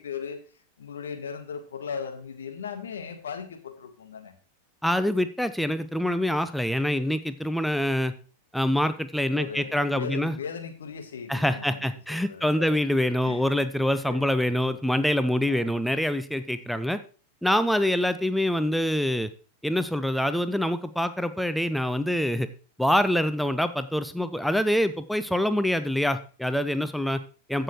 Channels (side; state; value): both; normal; correlation 0.89